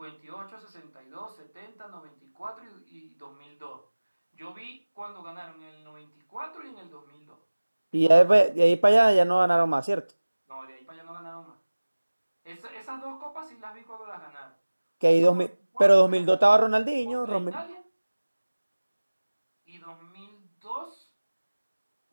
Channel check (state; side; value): inverted; both; correlation -1.00